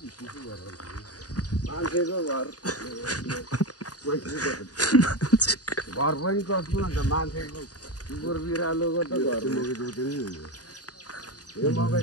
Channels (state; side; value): late; right; 0.68 ms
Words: घर पनि कस्तो अन्त मान्छेको कुकुर बिरालोको त घर मकै जोते नि हुन्छ यो मकै